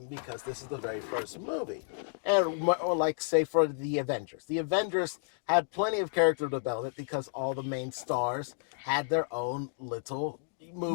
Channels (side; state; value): right; silent; digital silence